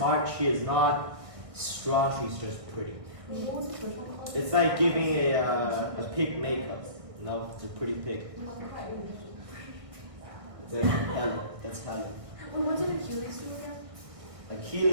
she is not strong, she's just pretty. It's like giving a pig makeup. No, it's a pretty pig. It's like Helen. That's Helen. Well, what did Achilles do again?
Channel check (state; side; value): late; left; 1.7 ms